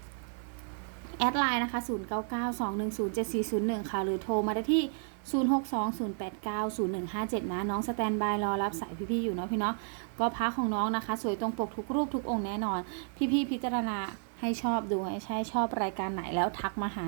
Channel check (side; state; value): left; silent; 56 dB below the other